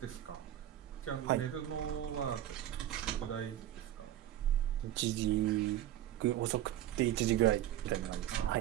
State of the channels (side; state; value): left; quieter; 12.4 dB